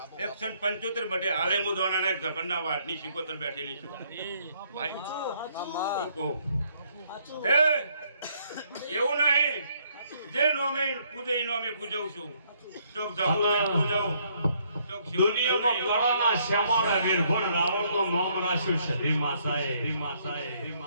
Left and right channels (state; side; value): inverted; both; correlation -0.68